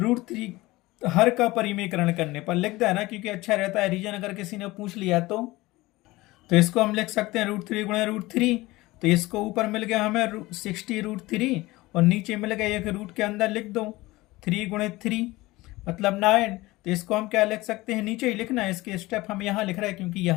हर का परिमेयकरण करने पर लिख देना, क्योंकि अच्छा रहता है रीजन अगर किसी ने पूछ लिया तो इसको हम लिख सकते हैं √3 गुणा √3, तो इसको ऊपर मिल गया हमें 60√3 और नीचे मिल गया एक रूट के अंदर लिख दो 3 गुणित 3 मतलब 9। तो इसको हम क्या लिख सकते हैं, नीचे ही लिखना है, इसके स्टेप हम यहाँ लिख रहे हैं क्योंकि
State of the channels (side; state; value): right; quieter; 19.8 dB